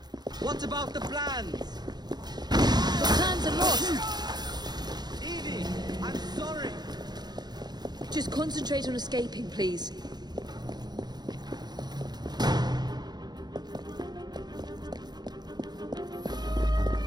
What about the plans? The plans are lost! Evie, I'm sorry. Just concentrate on escaping, please.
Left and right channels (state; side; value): late; left; 0.20 ms